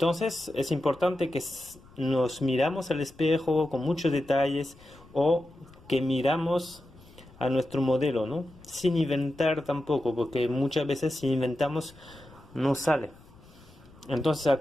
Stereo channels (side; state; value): left; noise; rumble, 24 dB below the sound